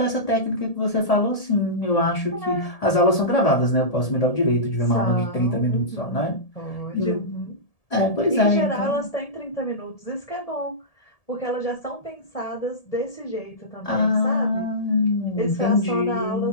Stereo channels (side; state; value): right; late; 1.7 ms